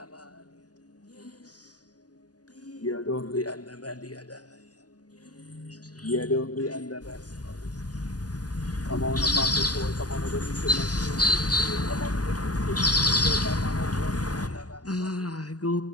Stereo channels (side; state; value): right; late; 0.68 ms